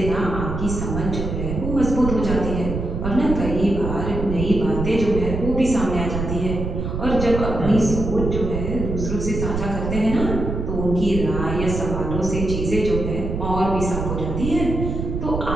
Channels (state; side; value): noise; right; rumble, 4 dB below the sound